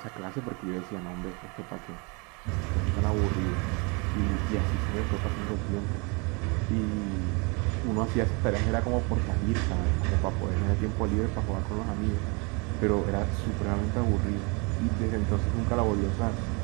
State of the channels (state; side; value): quieter; left; 30.8 dB